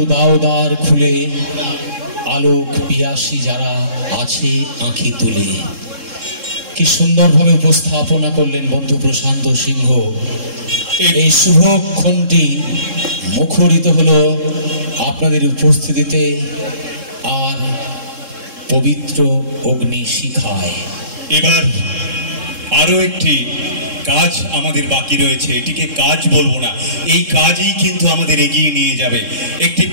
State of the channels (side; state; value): left; late; 3.7 ms